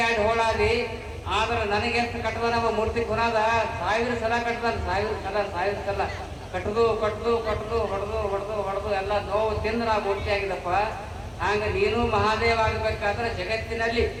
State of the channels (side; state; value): both; identical; correlation 1.00